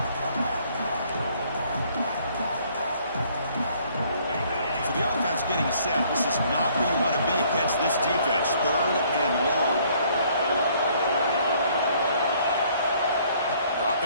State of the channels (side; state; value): both; inverted; correlation -0.62